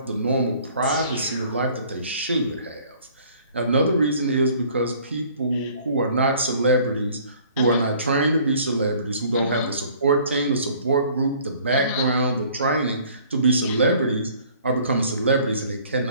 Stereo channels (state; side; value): inverted; both; correlation -0.55